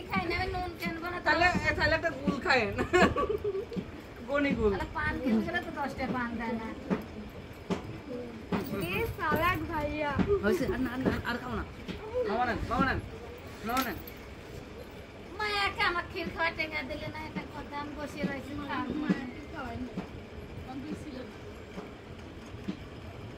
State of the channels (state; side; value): identical; both; correlation 1.00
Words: তাহলে একটা গুল খায়েন গনি গুল হয়েছে আর খাও না বাবা নেন মায়াকে আমার ক্ষীর খাওয়া টেকা দিলে না এটা কথা আমি বসে রয়েছি